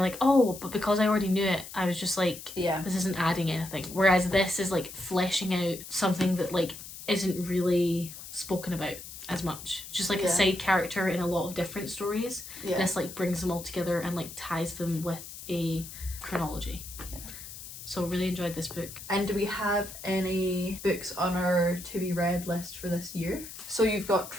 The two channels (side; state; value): left; noise; hiss, 13 dB below the sound